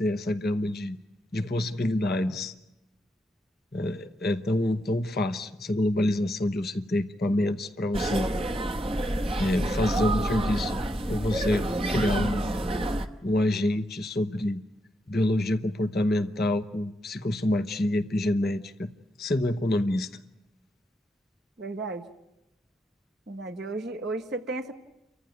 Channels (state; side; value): normal; both; correlation 0.81